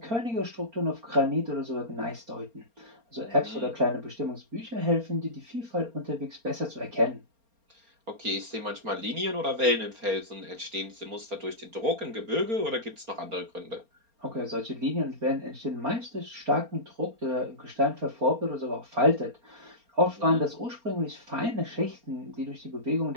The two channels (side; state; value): left; late; 4.3 ms